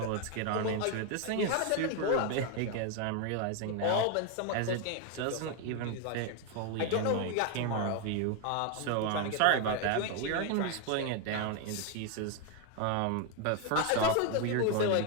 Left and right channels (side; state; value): both; different; correlation 0.01